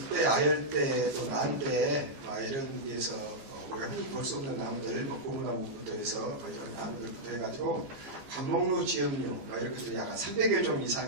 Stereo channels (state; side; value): late; left; 14 ms